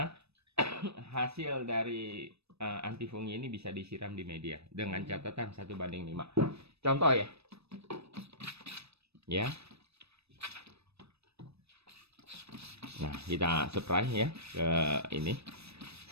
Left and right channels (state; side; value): late; left; 0.79 ms